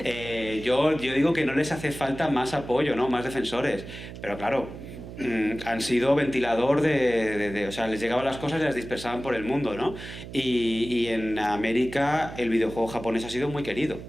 Yo digo que no les hace falta más apoyo, ¿no? Más defensores. Pero claro, han sido ventilador o sea, les llegaban las cosas y las dispersaban por el mundo, ¿no? Y en América el videojuego japonés ha sido muy querido.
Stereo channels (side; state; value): right; noise; hum, 12 dB below the sound